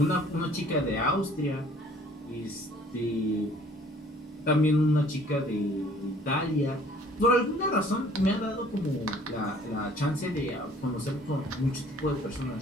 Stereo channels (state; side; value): normal; both; correlation 0.55